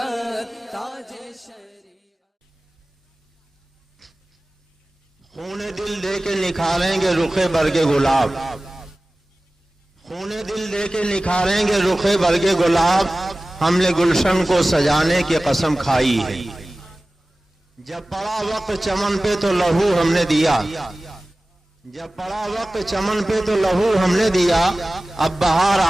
تاج شریعت۔ خون دل دے کے نکھاریں گے رخ برگ گلاب، خون دل دے کے نکھاریں گے رخ برگ گلاب، ہم نے گلشن کو سجانے کی قسم کھائی ہے۔ جب پڑا وقت چمن پہ تو لہو ہم نے دیا، جب پڑا وقت چمن پہ تو لہو ہم نے دیا، اب بہار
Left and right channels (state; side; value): normal; both; correlation 0.97